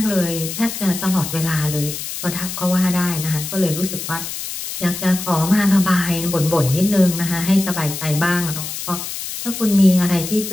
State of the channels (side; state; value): left; noise; hiss, 7 dB below the sound